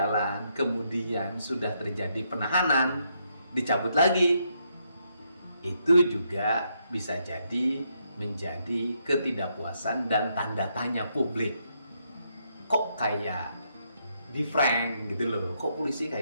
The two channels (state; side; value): inverted; both; correlation -0.77